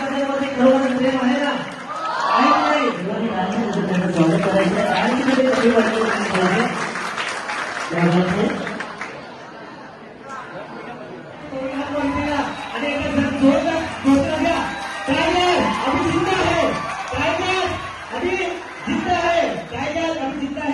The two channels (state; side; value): identical; both; correlation 1.00